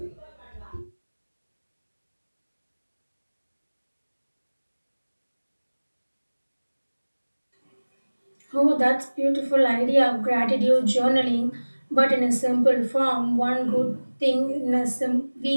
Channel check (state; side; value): inverted; both; correlation -1.00